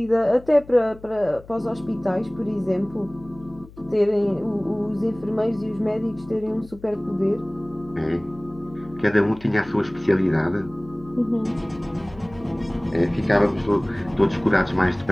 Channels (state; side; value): noise; left; hum, 20 dB below the sound